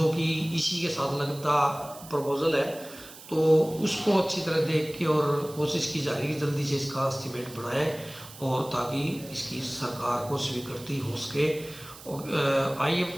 कि इसी के साथ लगता प्रपोजल है, तो उसको अच्छी तरह देख के और कोशिश की जा रही है कि जल्दी से इसका एस्टीमेट बनाएं और ताकि इसकी सरकार को स्वीकृति हो सके। और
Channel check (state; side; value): noise; right; hiss, 17 dB below the sound